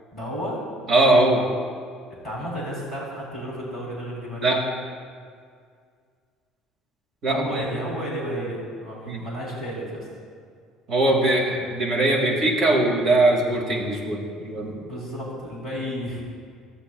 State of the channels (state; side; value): normal; both; correlation 0.59